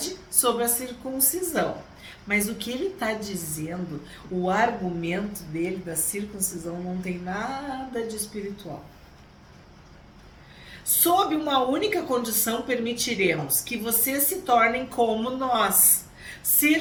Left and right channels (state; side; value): identical; both; correlation 1.00